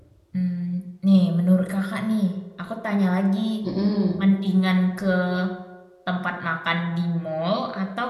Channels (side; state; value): both; identical; correlation 1.00